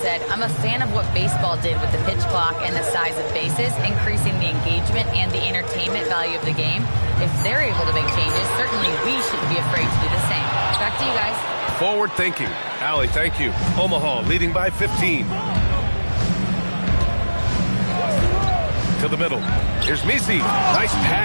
"I'm a fan of what baseball did with the pitch clock and the size of bases, increasing the engagement and the entertainment value of the game. If they're able to make changes, certainly we shouldn't be afraid to do the same." Back to you guys. Forward thinking. Allie, thank you. Omaha leading by 15. To the middle. Here's Misi. Nice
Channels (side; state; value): both; inverted; correlation -1.00